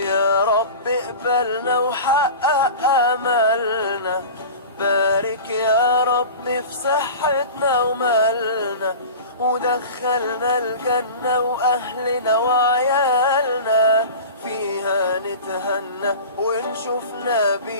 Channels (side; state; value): both; inverted; correlation -0.34